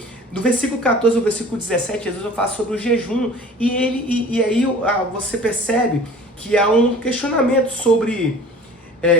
Do versículo 14 ao versículo 17, Jesus vai falar sobre o jejum, e aí você percebe que há um questionamento sobre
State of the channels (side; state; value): both; normal; correlation 0.44